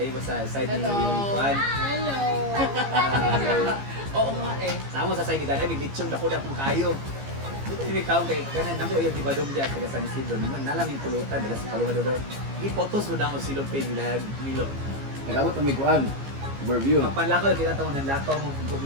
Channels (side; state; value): left; late; 15 ms